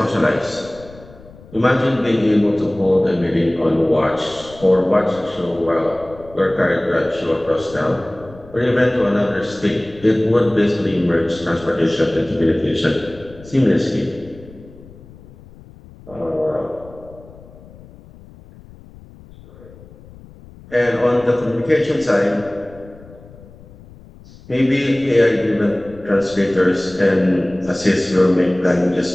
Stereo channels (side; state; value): left; noise; rumble, 21 dB below the sound